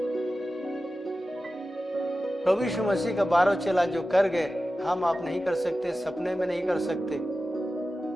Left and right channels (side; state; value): both; normal; correlation 0.94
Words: प्रभु यीशु मसीह का 12 चेला जो कर गए, हम आप नहीं कर सकते, सपने में नहीं कर सकते।